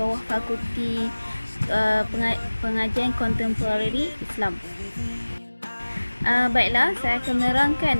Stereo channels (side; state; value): both; inverted; correlation -1.00